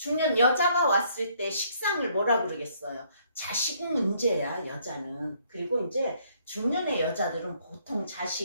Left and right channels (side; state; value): both; inverted; correlation -0.66